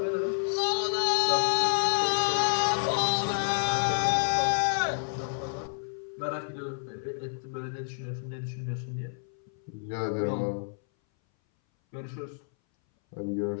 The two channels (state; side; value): silent; right; 58 dB below the other